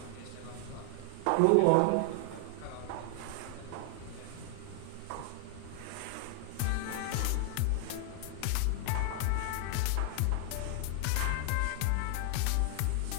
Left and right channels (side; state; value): both; different; correlation 0.00